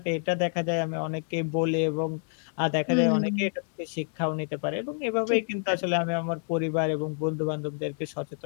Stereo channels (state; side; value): silent; right; 59 dB below the other